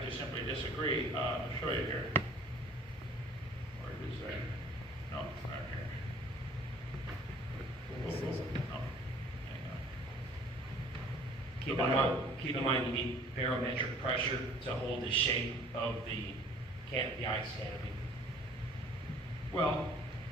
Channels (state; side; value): normal; both; correlation 0.53